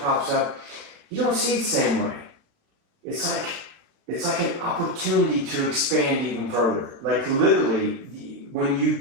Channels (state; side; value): late; left; 36 ms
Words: up, you don't see it the same way. It's like an opportunity to expand even further. Like literally, when you